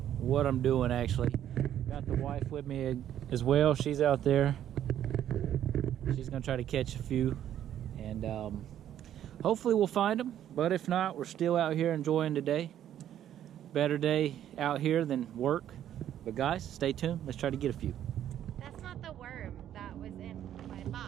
I'm doing actually. Got the wife with me as well. She's out there. She's gonna try to catch a few, and hopefully we'll find them. But if not, we're still out here enjoying today. Better day out here than work. But guys, stay tuned. Let's try to get a few. That's not the worm that was in my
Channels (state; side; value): quieter; left; 10.9 dB